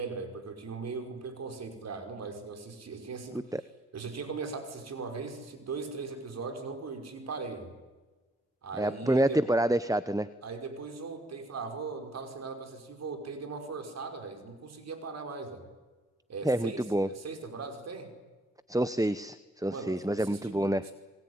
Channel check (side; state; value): both; normal; correlation 0.67